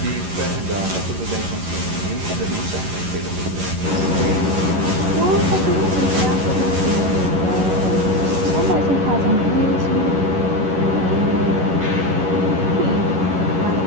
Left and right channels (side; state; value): left; late; 11 ms